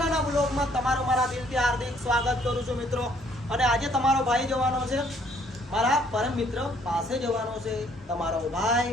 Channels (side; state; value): both; normal; correlation 0.63